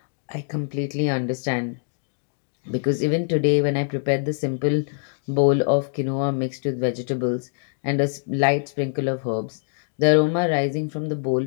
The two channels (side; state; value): right; silent; digital silence